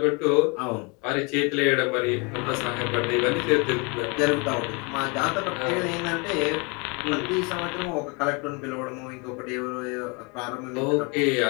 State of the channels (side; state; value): right; quieter; 30.6 dB